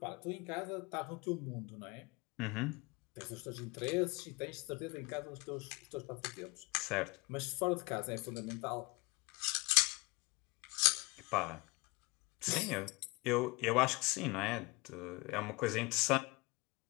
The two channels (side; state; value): right; quieter; 25.7 dB